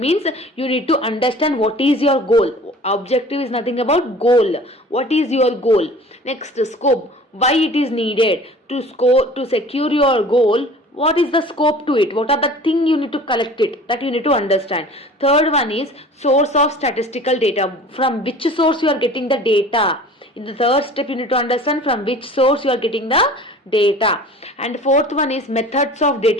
you need to understand what is your goal. Objective is nothing about goal. What is your goal? Next, scope, why it is needed to secure your goal. What is the scope to it? What are the thing you need to collect it? That you need to understand. Third one is source of statistical data. From which source you are getting the data? In the third step, you need to understand from which source you are getting the data. And fourth one is methods of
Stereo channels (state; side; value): normal; both; correlation 0.44